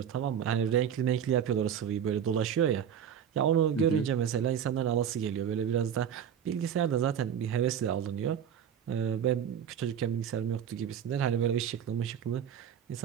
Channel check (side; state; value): left; quieter; 8.6 dB